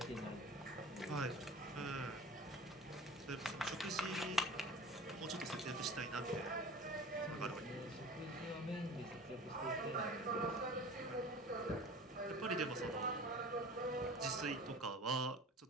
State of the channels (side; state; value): both; normal; correlation 0.40